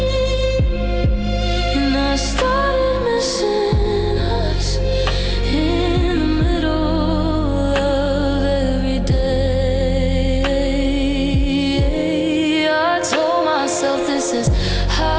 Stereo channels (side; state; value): both; identical; correlation 1.00